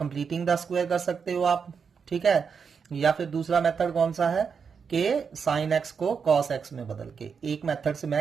the square कर सकते हो आप। ठीक है, या फिर दूसरा मेथड कौन सा है कि साइन एक्स को कॉस एक्स में बदल के। एक मेथड से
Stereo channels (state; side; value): quieter; left; 6.1 dB